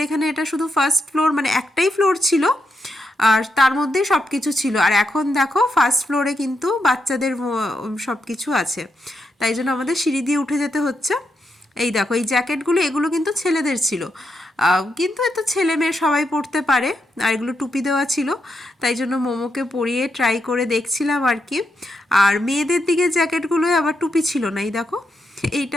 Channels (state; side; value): normal; both; correlation 0.83